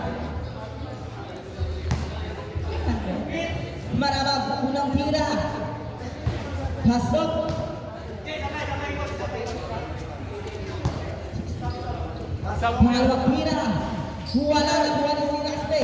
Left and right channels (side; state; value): both; identical; correlation 1.00